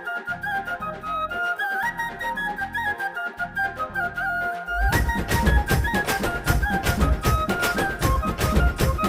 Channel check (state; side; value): identical; both; correlation 1.00